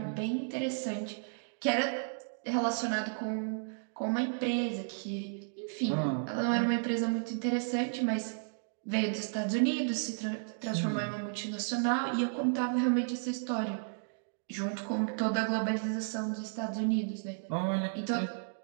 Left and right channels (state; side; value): silent; left; digital silence